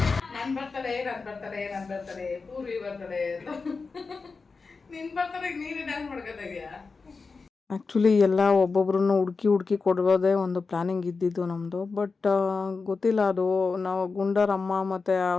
ನಾನು ಬರ್ತಾಳೆ ಪೂರ್ವಿ ಬರ್ತಾಳೆ ನಿನ್ ಬರ್ತಾಳೆ ನೀನೇ ಡ್ಯಾನ್ಸ್ ಮಾಡ್ಕೊತಾಯಿದ್ಯಾ. ಆ್ಯಕ್ಚುಲಿ ಎಲ್ಲ ಒಬ್ಬೊಬ್ರನ್ನ ಹುಡುಕಿ ಕೊಡೋದೇ ಒಂದು ಪ್ಲ್ಯಾನಿಂಗ್ ಇದ್ದಿದ್ದು ನಮ್ಮದು. ಬಟ್ ಗೊತ್ತಿಲ್ಲ, ಅದು ನಾವು ಗುಂಡರ ಅಮ್ಮ ಮತ್ತು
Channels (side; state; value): right; quieter; 4.4 dB